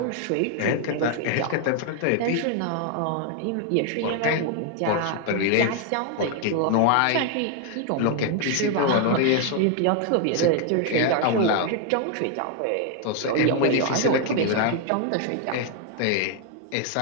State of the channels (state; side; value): different; both; correlation 0.01